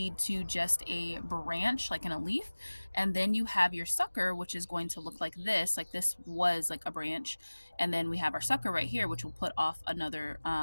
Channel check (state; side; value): inverted; both; correlation -1.00